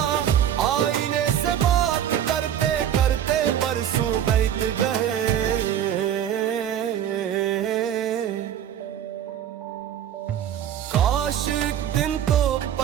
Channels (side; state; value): left; quieter; 10.1 dB